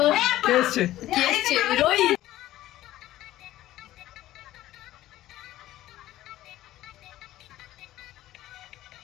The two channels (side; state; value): right; quieter; 14.7 dB